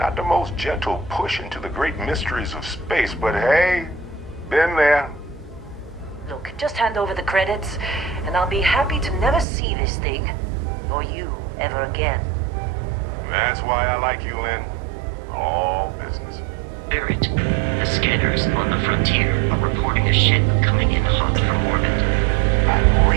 the most gentle push into the great mysteries of space, but hey, been there. Look, just hand over the credits, and I'll be happy to never see this thing, or you, ever again. That's why I like you, Lynn. All business. Barrett, the scanners on the frontier are reporting a ship coming in hot from orbit. I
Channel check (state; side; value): drops out; left; at 9.5 s